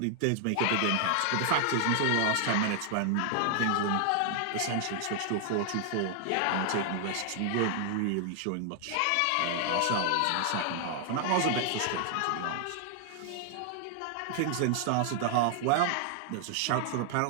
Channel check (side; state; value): both; different; correlation 0.00